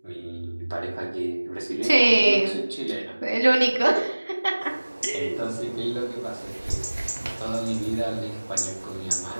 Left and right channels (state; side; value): inverted; both; correlation -1.00